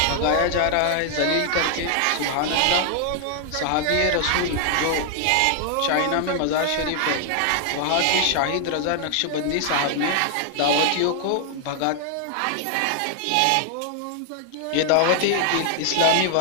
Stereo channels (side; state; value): both; different; correlation 0.00